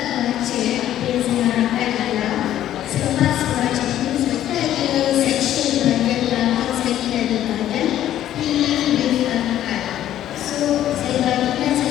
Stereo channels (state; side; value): quieter; right; 12.1 dB